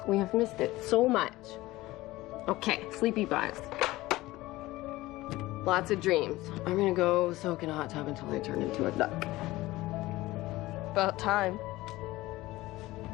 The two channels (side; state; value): right; quieter; 18.4 dB